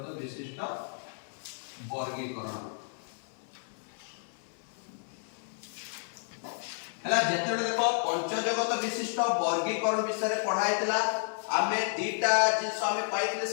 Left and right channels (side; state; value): right; silent; 57 dB below the other